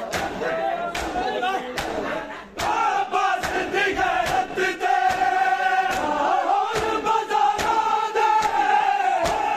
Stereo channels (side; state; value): both; identical; correlation 1.00